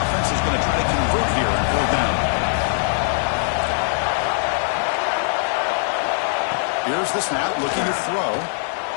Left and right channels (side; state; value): right; silent; digital silence